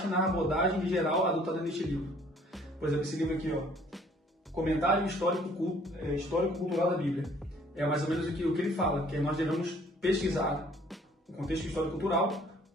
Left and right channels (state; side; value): normal; both; correlation 0.58